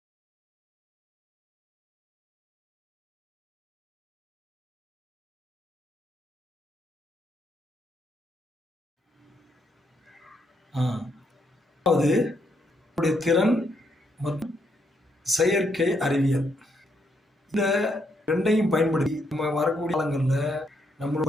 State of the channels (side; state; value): both; normal; correlation 0.76